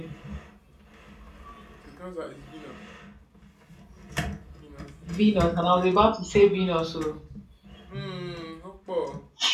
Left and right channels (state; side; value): identical; both; correlation 1.00